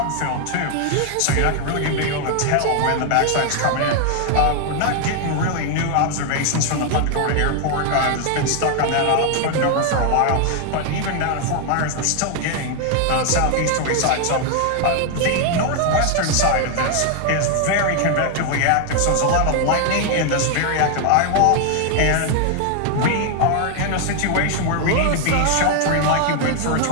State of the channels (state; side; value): different; both; correlation 0.00